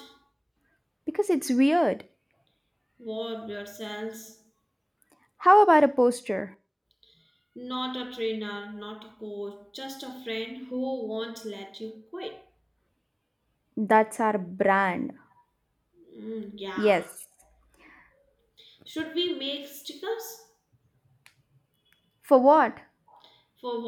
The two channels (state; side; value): identical; both; correlation 1.00